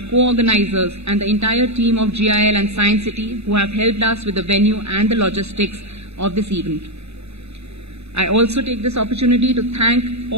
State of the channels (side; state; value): left; late; 0.80 ms